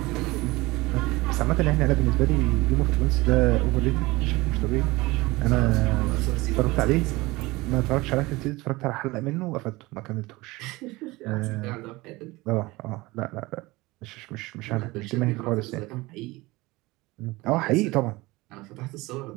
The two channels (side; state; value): left; quieter; 21.4 dB